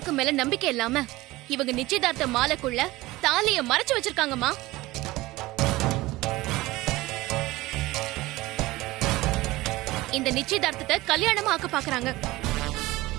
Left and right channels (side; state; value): left; quieter; 19.2 dB